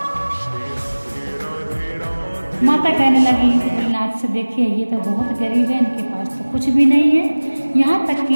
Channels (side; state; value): both; inverted; correlation -1.00